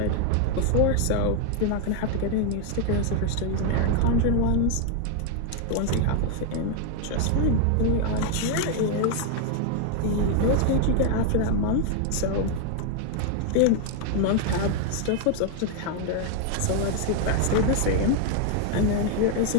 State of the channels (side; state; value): both; different; correlation 0.01